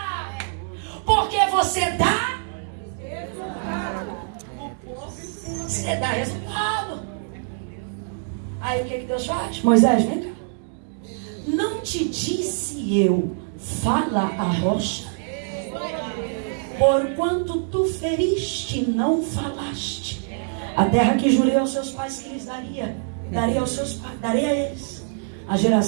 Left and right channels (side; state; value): left; silent; digital silence